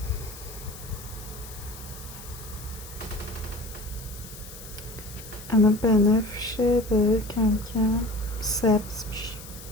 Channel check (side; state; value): left; noise; hiss, 15 dB below the sound